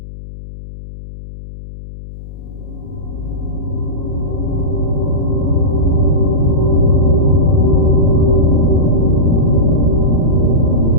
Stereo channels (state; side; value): noise; left; hum, 14 dB below the sound